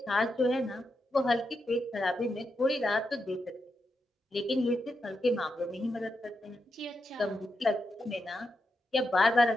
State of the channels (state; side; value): normal; both; correlation 0.85